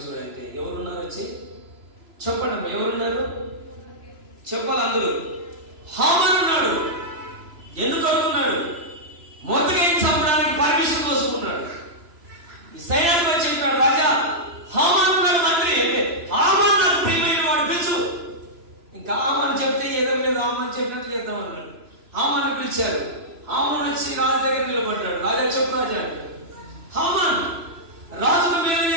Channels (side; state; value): left; late; 3.0 ms